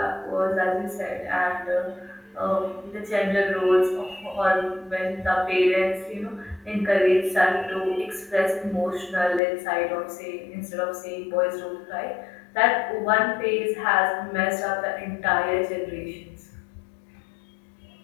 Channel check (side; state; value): right; drops out; at 9.4 s